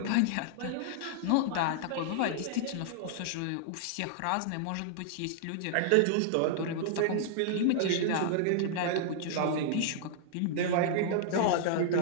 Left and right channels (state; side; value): different; both; correlation -0.01